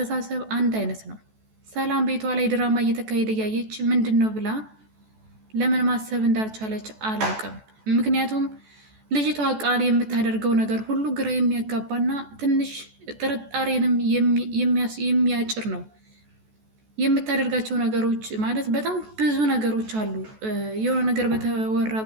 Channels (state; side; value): late; left; 14 ms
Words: አንድ አይነት ነው። ሰላም ቤቷ ላይ ድራማ እየተካሄደ እያየች ምንድን ነው ብላ ለምን ማሰብ እንዳልቻለች አላውቅም። ምክንያቱም ልጅቷ ቃል የምታደርገው ነገር ሁሉ ግራ የሚያጋባና ትንሽ ጥርጣሬንም የሚያጭር ነው። የምታደርጋቸው ነገሮች ማለት በጣም ብዙ ነገሮች አሉ። የሆነ ነገር በተወራ